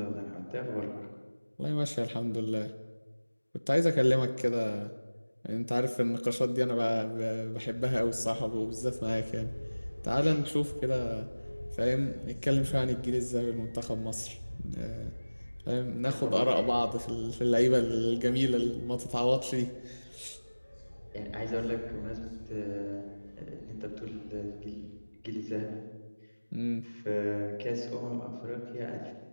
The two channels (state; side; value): inverted; both; correlation -1.00